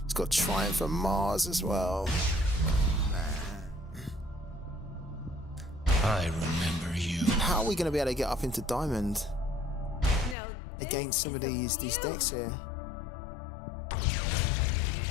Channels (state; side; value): drops out; right; at 10.4 s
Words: Triumph of Mars as well. I remember you. How are we going to be able to get up into Diamond against some of these decks here?